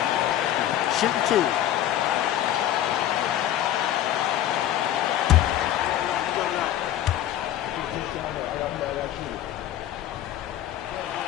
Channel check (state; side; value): quieter; right; 12.0 dB